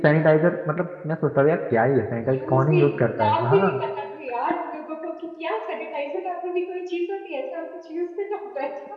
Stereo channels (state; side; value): identical; both; correlation 1.00